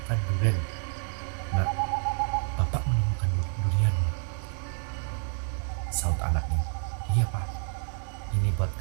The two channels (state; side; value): silent; left; 59 dB below the other